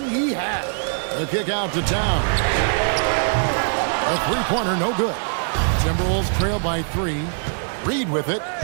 he had. The kick out to Towns. A 3-pointer, no good. Timberwolves trail by 3. Reed with it,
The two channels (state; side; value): silent; left; digital silence